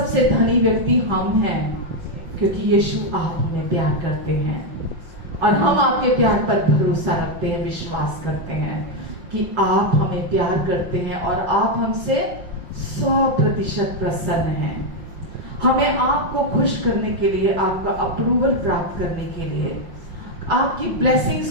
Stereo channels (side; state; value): left; late; 5.7 ms